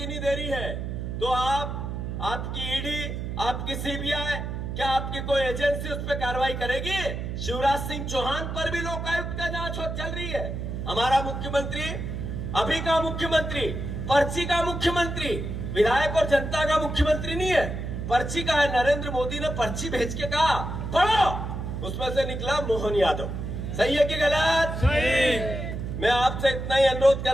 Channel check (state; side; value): noise; right; hum, 5 dB below the sound